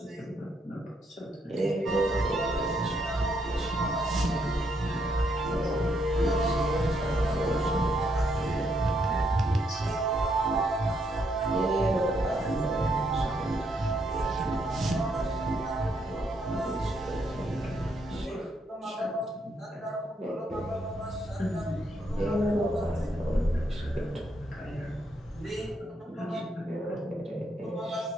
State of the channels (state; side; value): normal; both; correlation 0.75